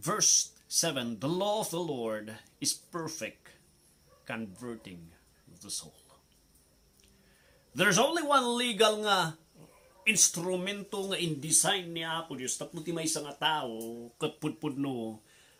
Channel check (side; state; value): both; identical; correlation 1.00